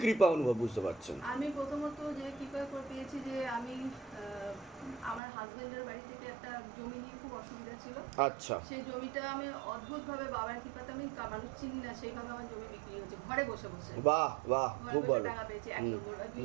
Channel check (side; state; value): left; drops out; at 5.2 s